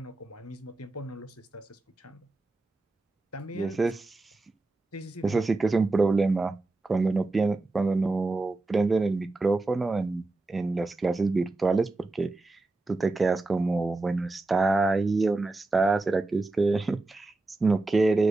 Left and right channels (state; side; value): quieter; left; 3.2 dB